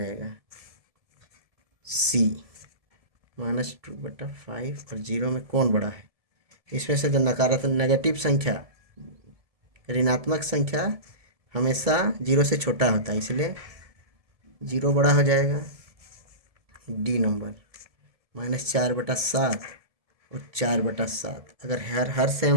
सी -2/5 और 0 में कौन बड़ा है? इसमें से जो नकारात्मक नेगेटिव संख्या, ऋणात्मक संख्या हमेशा 0 से छोटा होता है, इसलिए 0 बड़ा हो जाएगा। डी नंबर -4/7 और 4/7 अगर हर सेम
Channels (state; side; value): late; left; 1.7 ms